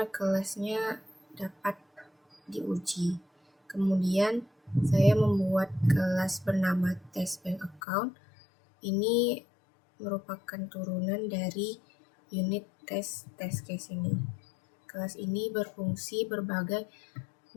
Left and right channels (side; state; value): right; drops out; at 7.8 s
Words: kelasnya dapat diuji. Kemudian saya membuat kelas bernama test bank account. Ini merupakan turunan dari unit test case ini. Kelas ini berfungsi berbagai